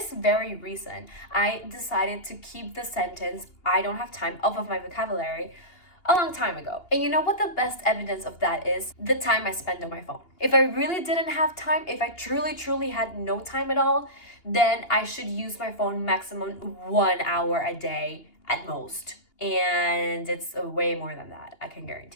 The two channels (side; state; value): right; late; 2.8 ms